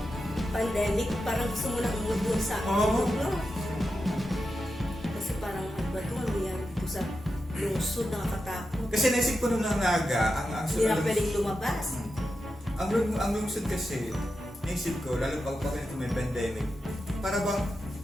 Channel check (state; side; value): normal; both; correlation 0.89